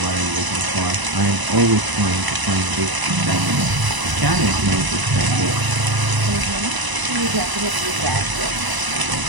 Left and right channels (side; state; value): left; late; 1.0 ms